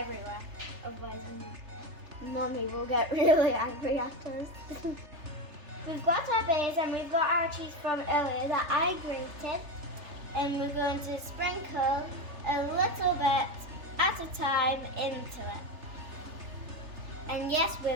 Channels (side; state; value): left; late; 3.3 ms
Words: Otherwise, Mummy will get really angry at us. We've got our base and we've got our cheese from earlier that I grated. And we're going to sprinkle a little bit at a time into it. And yes,